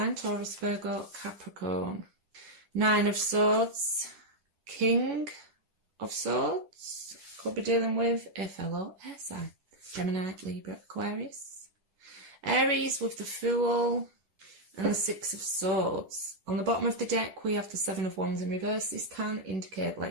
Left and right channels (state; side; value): late; left; 10 ms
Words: Taurus, Virgo, Capricorn. Nine of Swords. King of Swords. Could be dealing with a fellow air sign. Gemini, Libra, Aquarius. Aries with the Fool. And the Six of Swords. On the bottom of the deck, we have the Seven of Wands in reverse. This can indicate